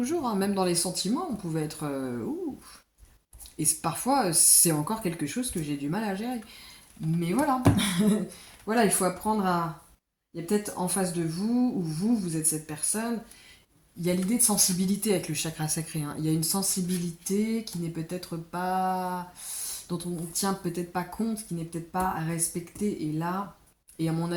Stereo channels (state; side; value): identical; both; correlation 1.00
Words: hein. Même dans les sentiments, on pouvait être... ouh. Et parfois, c'est encore quelque chose que j'ai du mal à gérer. Mais voilà. Voilà, il faut apprendre à... Il y a peut-être en face de vous, ou vous êtes cette personne, il y a l'idée de sensibilité avec le chakra sacré, hein. Il y a une sensibilité qui n'est peut-être pas... dont on ne tient peut-être pas compte, qui n'est peut-être pas respectée. Et là, et à mon